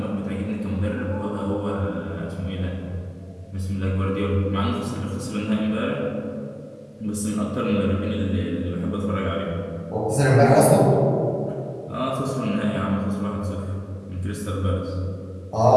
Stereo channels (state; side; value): identical; both; correlation 1.00